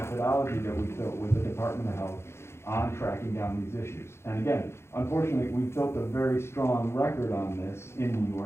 that we built with the Department of Health on tracking down these issues. And again, unfortunately, we've built a very strong record on this in New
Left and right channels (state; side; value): late; right; 0.12 ms